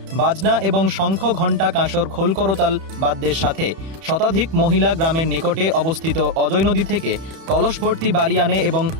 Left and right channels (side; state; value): left; late; 31 ms